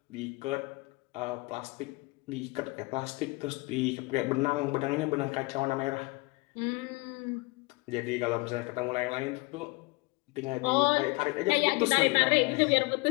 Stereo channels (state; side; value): quieter; right; 25.6 dB